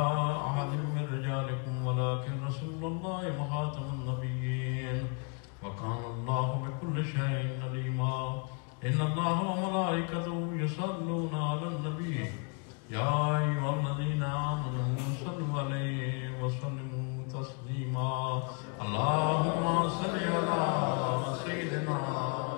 أحد من رجالكم ولكن رسول الله وخاتم النبيين وكان الله بكل شيء عليما إن الله وملائكته يصلون على النبي يا أيها الذين آمنوا صلوا عليه وسلموا تسليما اللهم صل على سيدنا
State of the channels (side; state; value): right; quieter; 36.6 dB